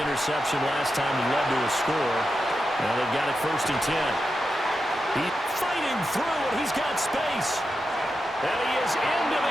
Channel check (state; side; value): normal; both; correlation 0.88